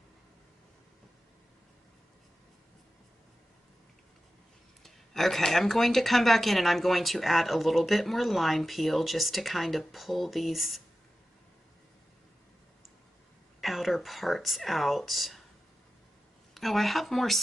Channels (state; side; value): normal; both; correlation 0.93